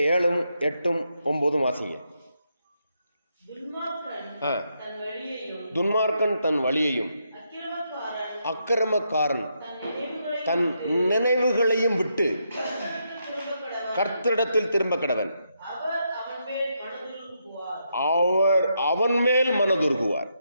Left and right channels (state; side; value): inverted; both; correlation -0.80